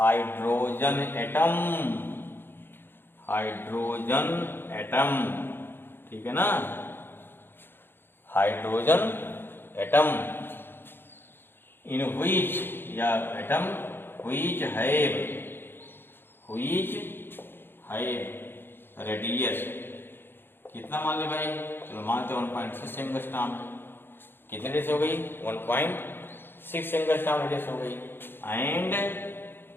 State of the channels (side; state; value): right; late; 0.10 ms